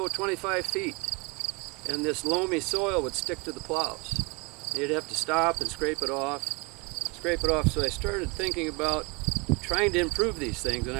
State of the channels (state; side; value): quieter; left; 28.4 dB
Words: 25 feet, and this loamy soil would stick to the plows. You'd have to stop and scrape it off. So I started thinking about trying to improve these things, and